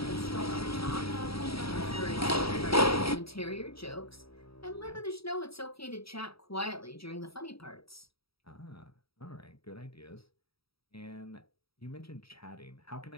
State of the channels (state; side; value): late; right; 0.76 ms